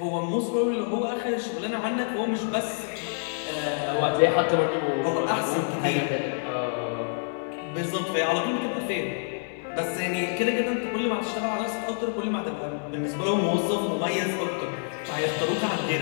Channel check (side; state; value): right; silent; 60 dB below the other